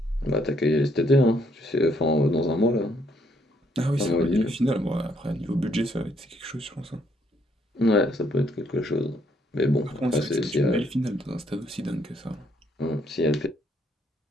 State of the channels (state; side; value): normal; both; correlation 0.70